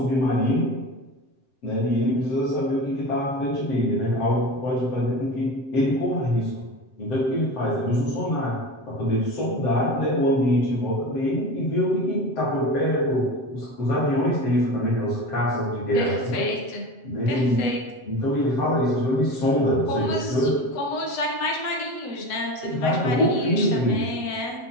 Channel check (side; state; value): right; late; 7.7 ms